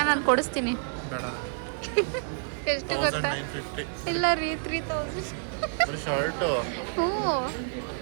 ನಾನು ಕೊಡಿಸ್ತೀನಿ. ಎಷ್ಟು ಗೊತ್ತಾ? ಇಲ್ಲ ರೀ, 3000. ಹ್ಞೂ,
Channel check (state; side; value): silent; left; 59 dB below the other